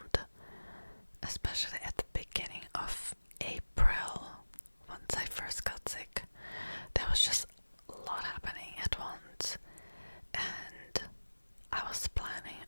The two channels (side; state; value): both; inverted; correlation -1.00